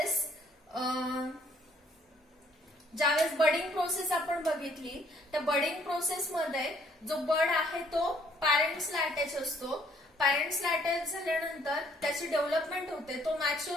बडिंग प्रोसेस आपण बघितली, त्या बडिंग प्रोसेस मध्ये जो बड आहे तो पॅरेंट्सला अटॅच असतो. पॅरेंट्सला अटॅच झाल्यानंतर त्याची डेव्हलपमेंट होते, तो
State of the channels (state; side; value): normal; both; correlation 0.64